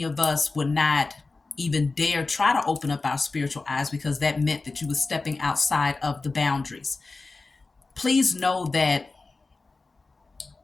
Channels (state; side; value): quieter; right; 3.7 dB